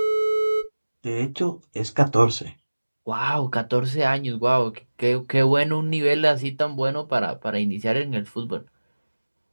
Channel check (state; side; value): inverted; both; correlation -1.00